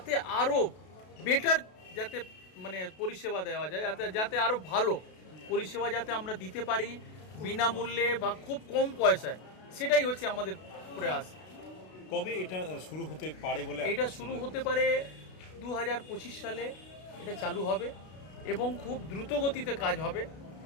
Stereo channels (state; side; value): late; right; 32 ms